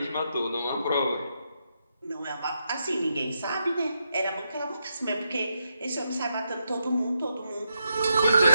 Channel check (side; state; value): both; inverted; correlation -0.82